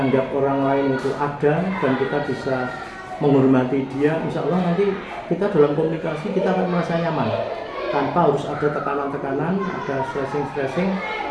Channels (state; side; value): identical; both; correlation 1.00